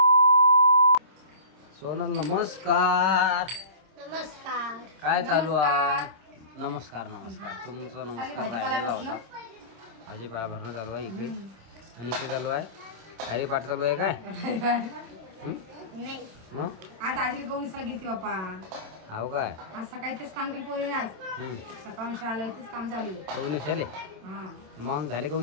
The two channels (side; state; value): left; late; 27 ms